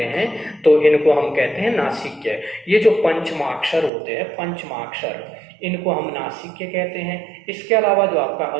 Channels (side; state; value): left; drops out; at 3.9 s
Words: हैं, तो इनको हम कहते हैं नासिक्य। ये जो पंचमाक्षर होते हैं, पंचमाक्षर, इनको हम नासिक्य कहते हैं। इसके अलावा जो आपका